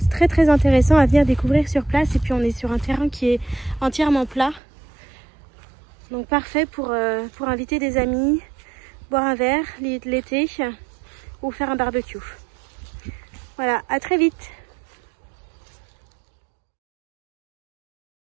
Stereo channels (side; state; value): left; drops out; at 4.6 s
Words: très très intéressant à venir découvrir sur place. Et puis on est sur un terrain qui est entièrement plat. Donc parfait pour inviter des amis, boire un verre l'été ou faire un barbecue. Voilà, à très vite.